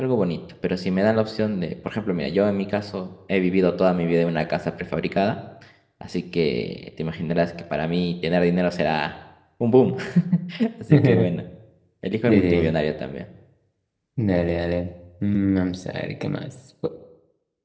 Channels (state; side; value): identical; both; correlation 1.00